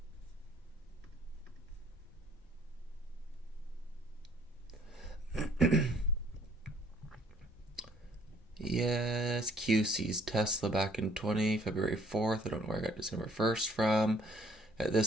yes, QC's Tesla back in February 4th. I don't know where I got December 1st from. At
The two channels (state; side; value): normal; both; correlation 0.60